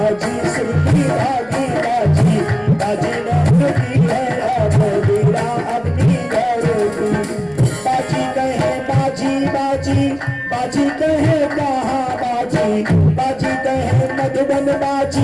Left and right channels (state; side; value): noise; right; rumble, 26 dB below the sound